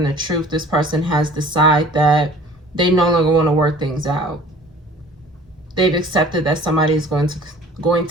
the truth, this person has decided that they no longer want to work things out. They've accepted that somebody is going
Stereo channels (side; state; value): both; normal; correlation 0.48